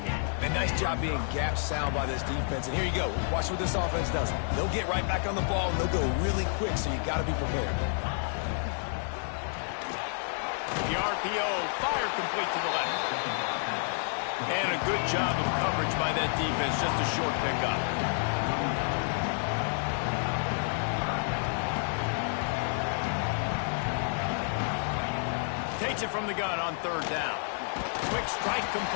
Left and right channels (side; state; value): right; silent; 58 dB below the other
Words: And nice job being gap sound by this defense. And here you go. Watch what this offense does. They'll get right back on the ball, and they'll go really quick, so you got to be prepared. The RPO, fire complete to the left. And a good job of coverage by that defense, just a short pickup. Takes it from the gun on third down. Quick strike